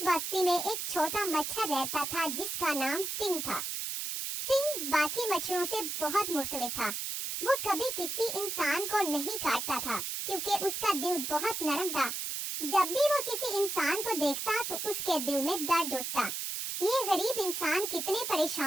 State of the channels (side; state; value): right; noise; hiss, 3 dB below the sound